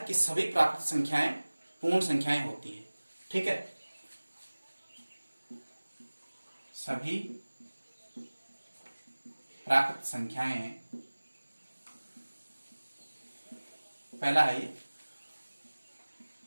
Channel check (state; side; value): inverted; both; correlation -1.00